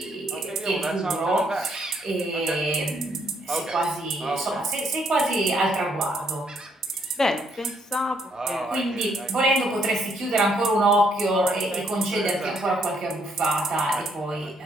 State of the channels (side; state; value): both; normal; correlation 0.71